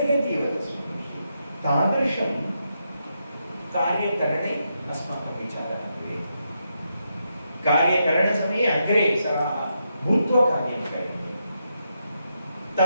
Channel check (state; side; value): inverted; both; correlation -0.83